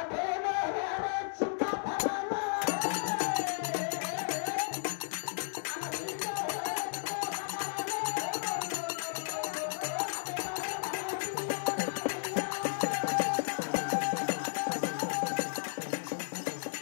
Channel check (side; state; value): right; silent; digital silence